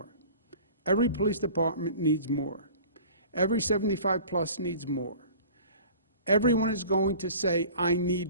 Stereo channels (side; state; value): both; inverted; correlation -0.43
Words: Every police department needs more. Every 75 plus needs more. Everyone is going to say, I